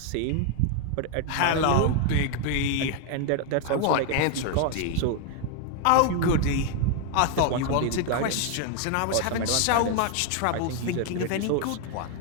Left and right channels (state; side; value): different; both; correlation 0.00